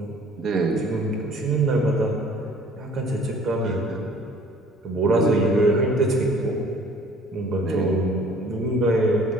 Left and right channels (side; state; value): both; normal; correlation 0.53